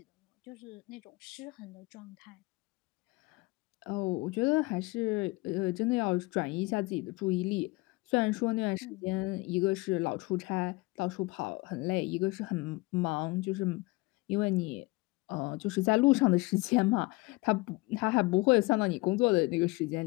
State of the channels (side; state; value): right; quieter; 23.2 dB